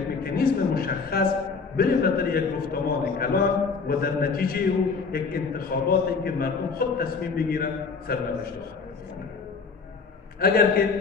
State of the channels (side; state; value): right; quieter; 5.0 dB